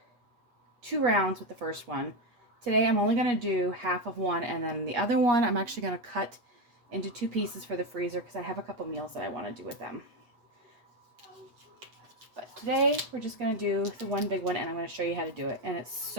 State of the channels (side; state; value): left; late; 8.3 ms